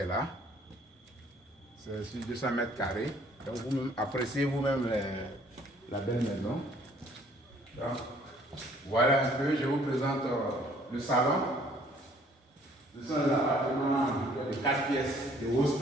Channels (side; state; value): both; normal; correlation 0.59